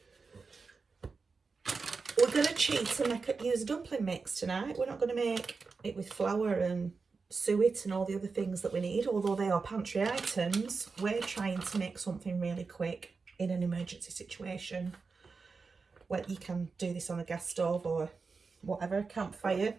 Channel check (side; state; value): left; quieter; 4.6 dB